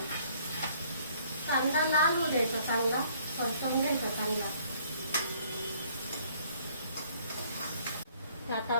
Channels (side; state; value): both; inverted; correlation -0.60